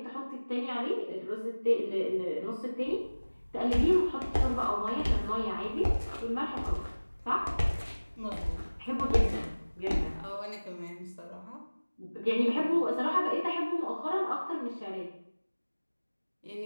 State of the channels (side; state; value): both; inverted; correlation -1.00